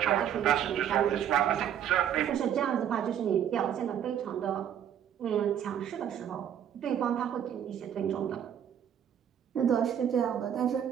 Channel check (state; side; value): quieter; left; 9.5 dB